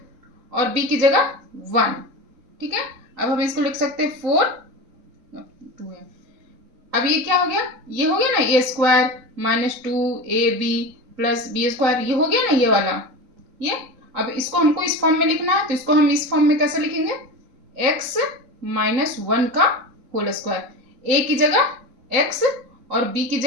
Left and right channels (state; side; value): late; left; 3.9 ms